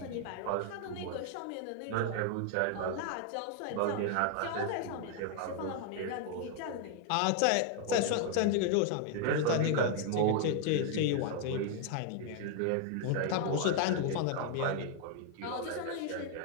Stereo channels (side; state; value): both; different; correlation 0.00